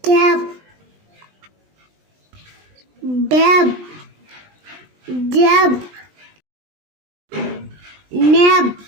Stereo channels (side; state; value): left; late; 20 ms